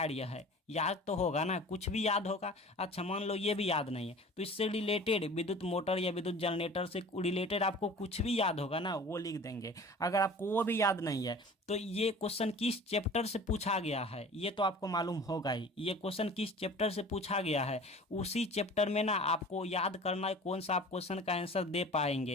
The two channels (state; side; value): normal; both; correlation 0.42